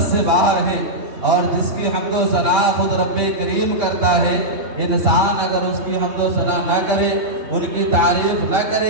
سے باہر ہے، اور جس کی حمد و ثنا خود رب کریم کرتا ہے۔ انسان اگر اس کی حمد و ثنا نہ کرے، ان کی تعریف نہ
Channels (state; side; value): late; left; 3.2 ms